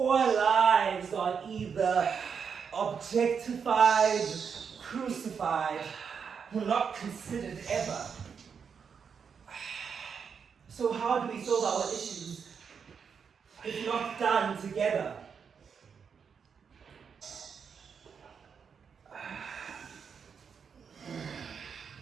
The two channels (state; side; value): quieter; left; 6.5 dB